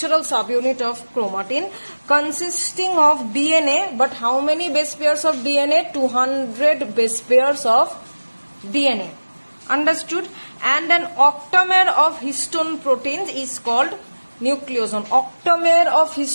subunit of chromatin consisting of DNA, but how many base pairs of DNA? 200 base pairs of DNA. Understood? And an octamer of histone proteins is called nucleosome. Octamer of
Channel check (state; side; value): inverted; both; correlation -1.00